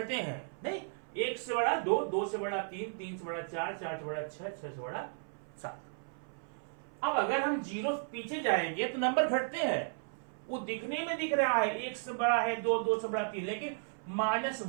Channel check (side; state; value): left; silent; 55 dB below the other